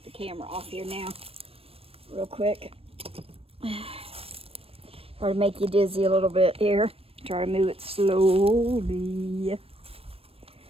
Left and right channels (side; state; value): left; late; 0.28 ms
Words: the camera off here now real quick. Try to make you dizzy a little bit here. Try to move it slowly.